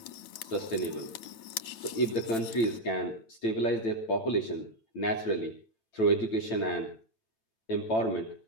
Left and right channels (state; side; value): late; right; 9.3 ms